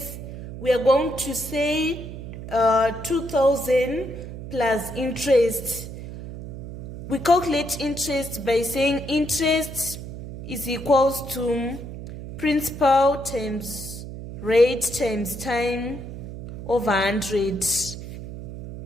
we are going to say 2,000 plus interest. We calculate interest by saying interest is equals to principal times rate times time over 100.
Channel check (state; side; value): noise; right; hum, 10 dB below the sound